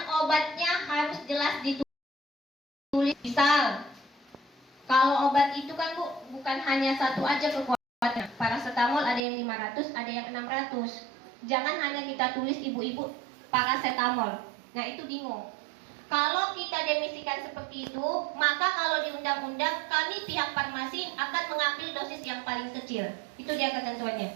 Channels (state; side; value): drops out; left; at 9.2 s